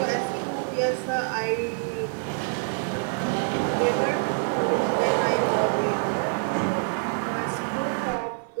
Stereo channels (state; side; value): silent; left; 61 dB below the other